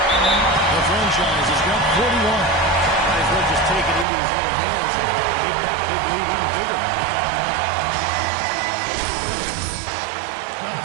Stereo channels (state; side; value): drops out; left; at 4.0 s